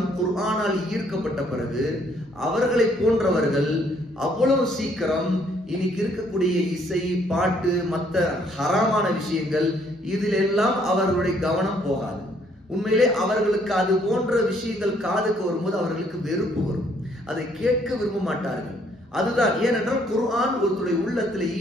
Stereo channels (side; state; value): both; normal; correlation 0.66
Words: குர்ஆனால் ஈர்க்கப்பட்ட பிறகு அவர்களை போன்றவர்கள் அவ்வளவு சீக்கிரம் இன்னைக்கு இருக்கக்கூடிய இசை, பாட்டு, மற்ற ஹராமான விஷயங்கள் இதிலெல்லாம் அவர்களுடைய கவனம் போகாது. உண்மையிலே அவர்களுக்கு அது போன்ற விஷயங்கள் காதுக்கு வரும்போது அவர்களுக்கு வெறுப்பு வரும். அதை கேட்க விரும்ப மாட்டார்கள். அதுதான் ஏனென்றால் குர்ஆன் ஒருத்தருடைய உள்ளத்துல